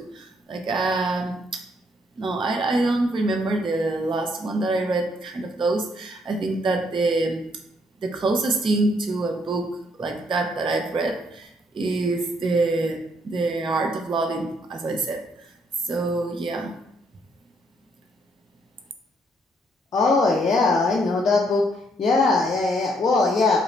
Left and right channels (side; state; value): both; normal; correlation 0.70